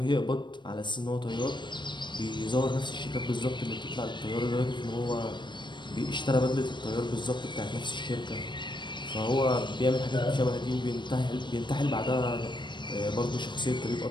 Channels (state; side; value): late; right; 0.22 ms